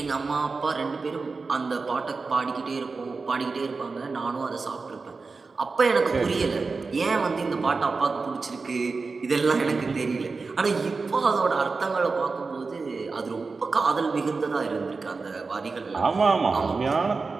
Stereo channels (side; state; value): left; quieter; 4.3 dB